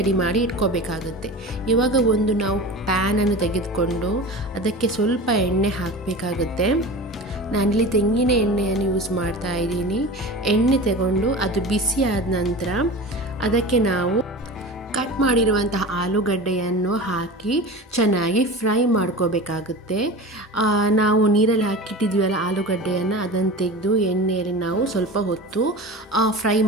ಮಾಡಿ ಇಟ್ಕೋಬೇಕಾಗುತ್ತೆ. ಇವಾಗ ಒಂದು ನಾವು ಪ್ಯಾನನ್ನು ತೆಗೆದುಕೊಂಡು ಅದಕ್ಕೆ ಸ್ವಲ್ಪ ಎಣ್ಣೆ ಹಾಕಬೇಕಾಗುತ್ತೆ. ನಾನಿಲ್ಲಿ ತೆಂಗಿನ ಎಣ್ಣೆಯನ್ನು ಯೂಸ್ ಮಾಡ್ತಾ ಇದ್ದೀನಿ. ಎಣ್ಣೆ ತಗೊಂಡು ಅದು ಬಿಸಿ ಆದ ನಂತರ ಅದಕ್ಕೆ ನಾವು ಕಟ್ ಮಾಡಿರುವಂತಹ ಆಲೂಗಡ್ಡೆಯನ್ನು ಹಾಕಿ ಚೆನ್ನಾಗಿ ಫ್ರೈ ಮಾಡ್ಕೋಬೇಕಾಗುತ್ತೆ. ನಾವು ನೀರಲ್ಲಿ ಹಾಕಿಟ್ಟಿದ್ವಲ್ಲ ಆಲೂಗಡ್ಡೆಯನ್ನು ಅದನ್ನು ತೆಗೆದು ಎಣ್ಣೆಯಲ್ಲಿ ನಾವು ಸ್ವಲ್ಪ ಹೊತ್ತು ಫ್ರೈ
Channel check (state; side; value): normal; both; correlation 0.32